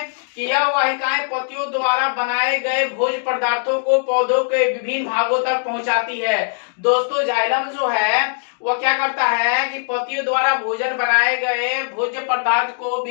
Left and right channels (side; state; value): right; silent; digital silence